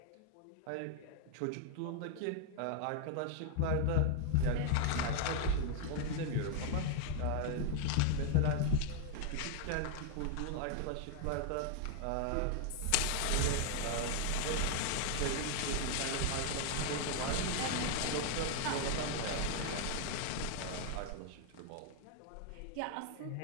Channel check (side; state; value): both; different; correlation 0.00